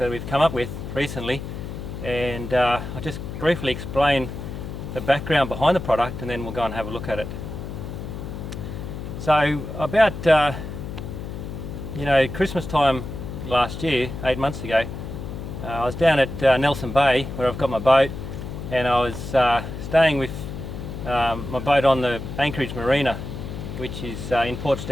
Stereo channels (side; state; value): left; noise; hum, 8 dB below the sound